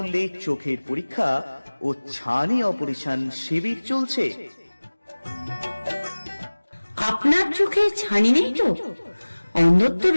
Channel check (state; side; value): inverted; both; correlation -1.00